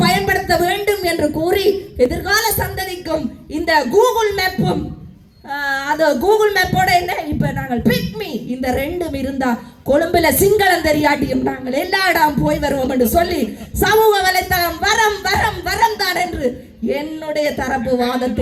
பயன்படுத்த வேண்டும் என்று கூறி எதிர்கால சந்ததிக்கும் இந்த கூகுள் மேப்பும் அது கூகுள் மேப்போட என்ன இப்ப நாங்கள் பிக்மி இந்த 2 இருந்தா கொழும்புல சிங்களம் தெரியாட்டியும் நாங்கள் எல்லா இடம் போய் வருவோம் என்று சொல்லி சமூக வலைத்தளம் வரம் வரம் வரம் தான் என்று என்னுடைய தரப்பு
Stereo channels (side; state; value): both; identical; correlation 1.00